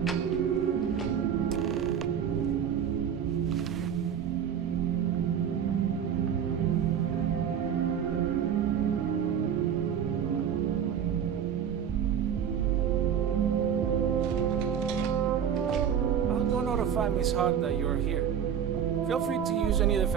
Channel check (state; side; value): quieter; left; 8.4 dB